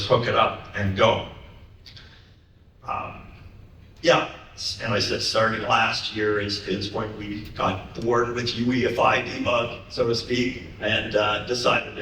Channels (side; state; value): both; identical; correlation 1.00